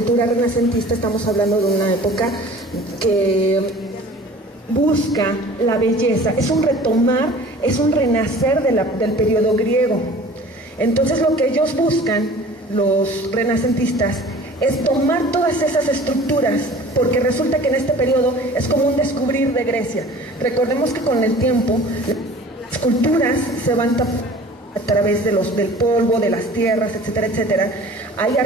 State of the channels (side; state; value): both; normal; correlation 0.45